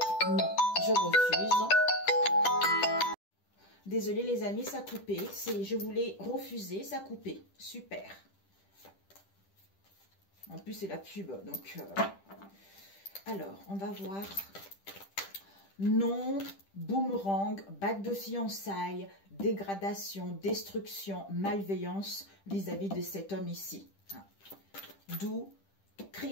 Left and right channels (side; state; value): right; late; 10 ms